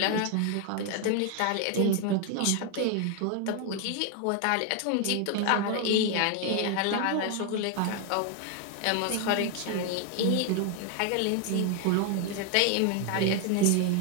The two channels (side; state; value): both; different; correlation 0.01